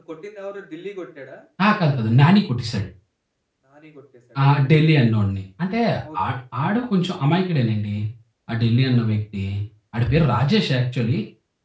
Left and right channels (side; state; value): both; identical; correlation 1.00